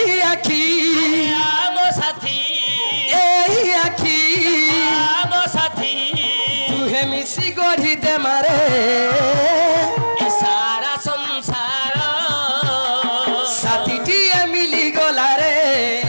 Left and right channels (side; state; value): both; inverted; correlation -1.00